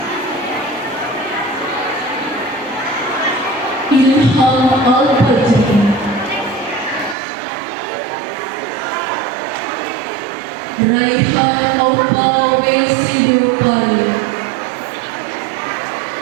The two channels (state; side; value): drops out; left; at 7.2 s